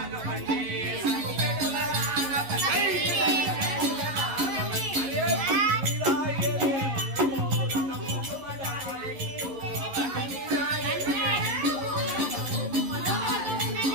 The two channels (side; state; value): left; late; 11 ms